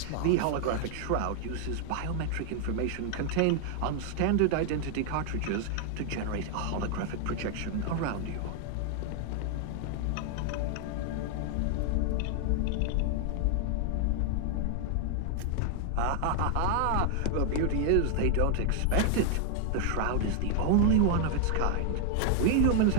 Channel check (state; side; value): different; both; correlation 0.00